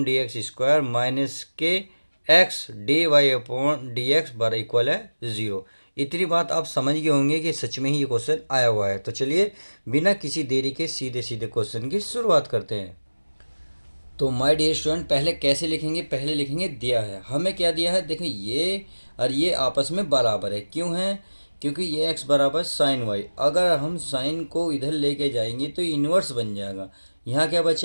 D X square minus के x dy upon D x बराबर इक्वल है 0। इतनी बात आप समझ गए होंगे कि सच में ही ये क्वेश्चन आया हुआ है। तो चलिए बिना किसी देरी के सीधे सीधे क्वेश्चन की शुरुआत करते हैं। तो माय डियर स्टूडेंट, पहले कैसे लिखेंगे, पहले लिखेंगे दिया है। हमें क्या दिया है, देखिए ये और ये आपस में बराबर है। क्यों है? क्योंकि ये x बराबर साइन वाई। अगर हम साइन को इधर लेके जाएंगे तो इन्वर्स बन जाएगा। यहाँ क्या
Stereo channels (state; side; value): inverted; both; correlation -1.00